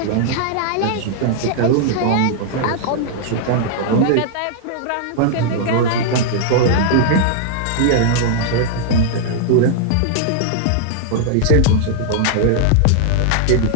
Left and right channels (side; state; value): both; different; correlation -0.01